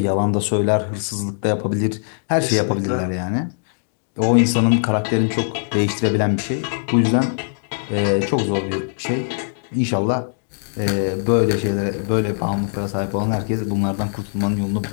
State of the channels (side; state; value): right; silent; digital silence